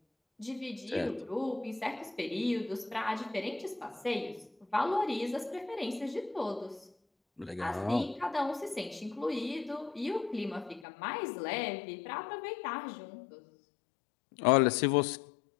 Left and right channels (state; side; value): drops out; right; at 10.9 s